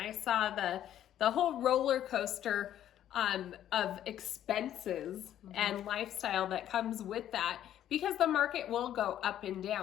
saw the whole roller coaster of expenses and lifestyle that comes with that, because the market will go up and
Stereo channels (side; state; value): right; quieter; 11.3 dB